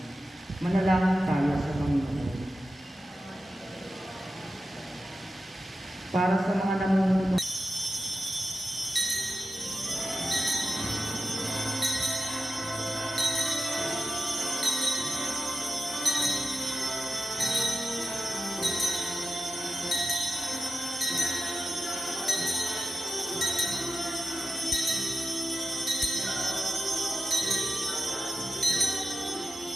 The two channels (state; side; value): normal; both; correlation 0.91